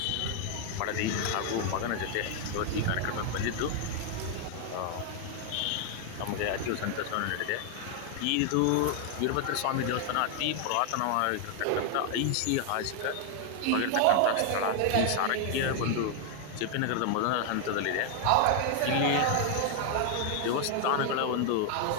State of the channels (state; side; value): different; both; correlation 0.00